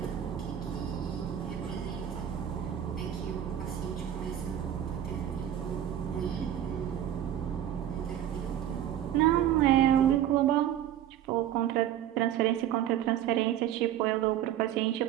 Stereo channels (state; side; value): quieter; left; 11.0 dB